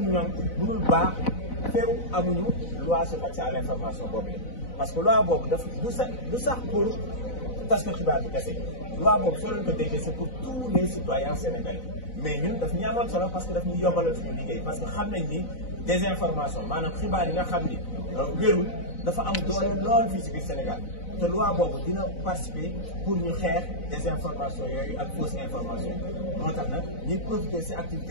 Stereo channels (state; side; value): late; right; 4.0 ms